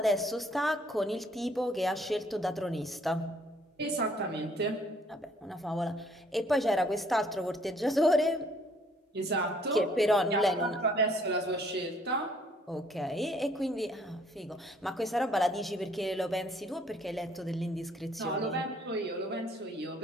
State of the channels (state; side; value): normal; both; correlation 0.62